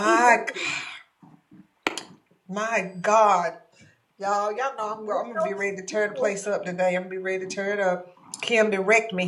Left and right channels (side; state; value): both; identical; correlation 1.00